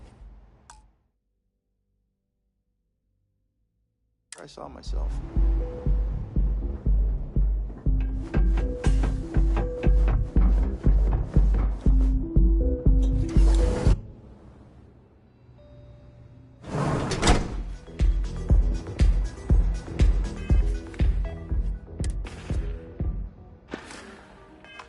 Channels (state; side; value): identical; both; correlation 1.00